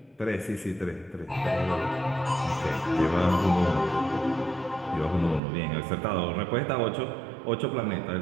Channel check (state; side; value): drops out; left; at 5.4 s